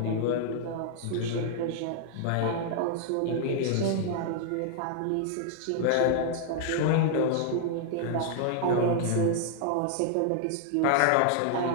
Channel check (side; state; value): both; different; correlation -0.01